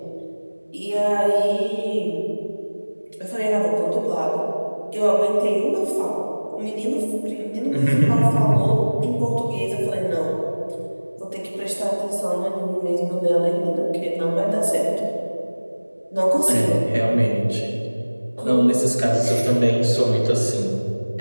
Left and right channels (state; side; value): inverted; both; correlation -1.00